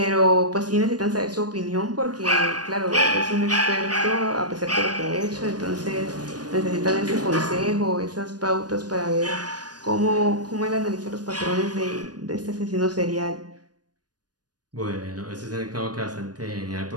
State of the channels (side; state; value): left; late; 0.69 ms